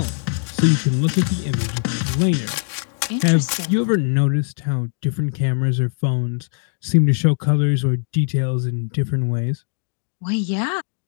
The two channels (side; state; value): right; silent; 57 dB below the other